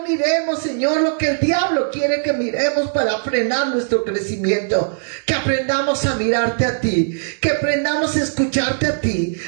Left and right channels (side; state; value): left; silent; digital silence